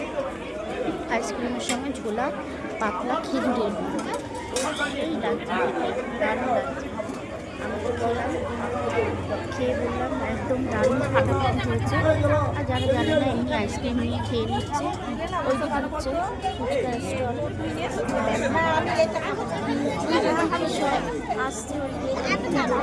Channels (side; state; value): both; identical; correlation 1.00